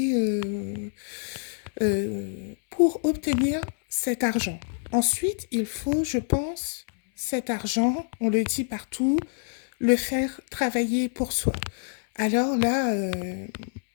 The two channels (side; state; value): right; silent; 61 dB below the other